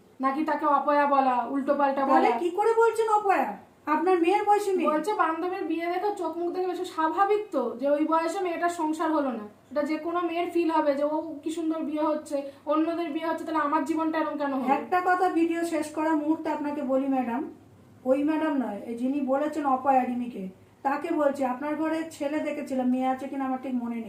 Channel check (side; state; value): both; identical; correlation 1.00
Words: নাকি তাকে অপয়া বলা, উল্টো পাল্টা বলা। কি করে বলছেন অপয়া? আপনার মেয়ের বয়সী মেয়ে। বলছে বান্ধবীর বিয়ে দেখে চোখ মুখ দেখে বেশি স্বাভাবিক তো যে ওই বয়সে মেয়েটার সংসার হলো না। এটা যে কোনো মেয়ের ফিল হবে যে ও কি সুন্দর বিয়ে হচ্ছে, অন্যদের বিয়ে হচ্ছে, তাহলে আমার জীবনটা এরকম কেন হবে? একটা কথা ভিডিও শেষ করার মুহূর্তে আপনাকে বলি ম্যাডাম, ওই ম্যাডাম নয়, যিনি বলেছেন অপয়া রিমিকে, তাকে বলছি আপনার ঘরে ছেলে দেখেছিলাম, মেয়ে আছে কিনা আমার ঠিক মনে